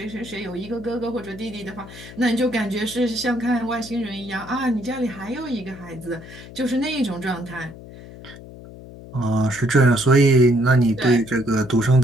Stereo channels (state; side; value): noise; left; hum, 16 dB below the sound